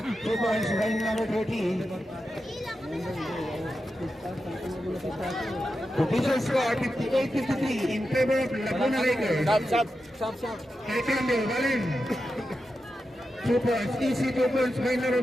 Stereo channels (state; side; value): normal; both; correlation 0.89